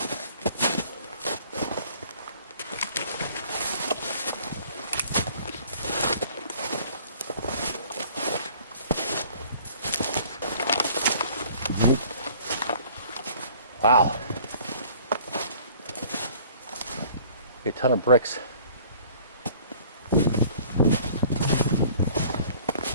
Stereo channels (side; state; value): both; inverted; correlation -0.52